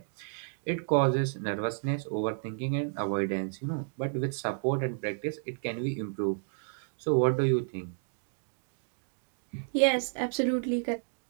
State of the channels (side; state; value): left; silent; digital silence